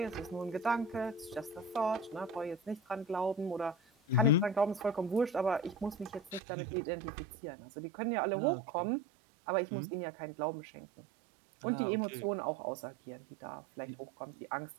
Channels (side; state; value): left; drops out; at 6.4 s